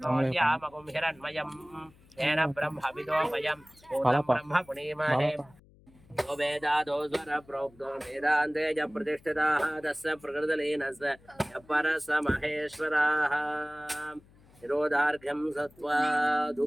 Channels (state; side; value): noise; left; hum, 27 dB below the sound